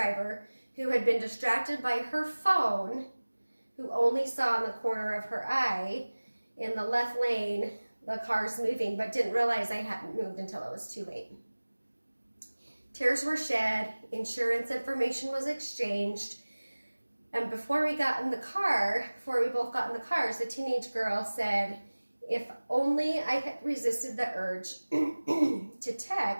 who had been distracted by her phone, who only saw in the corner of her eye in the left lane the car's moving, but didn't realize I hadn't moved until it was too late. Tears were shed, insurance information was exchanged, and before we both got in the cars, the teenage girl said, "If only I had resisted the urge to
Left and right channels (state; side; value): inverted; both; correlation -1.00